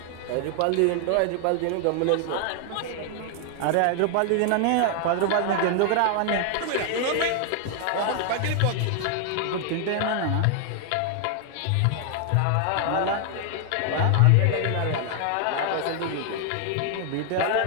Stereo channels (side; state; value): both; different; correlation 0.00